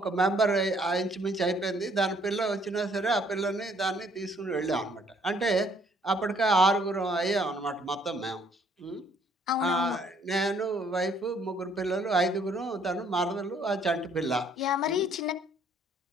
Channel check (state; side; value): normal; both; correlation 0.64